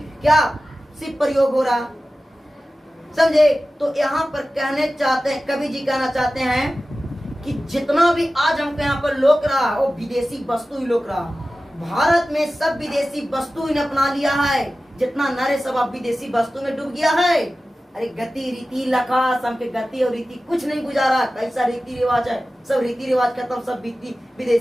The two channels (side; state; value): both; normal; correlation 0.95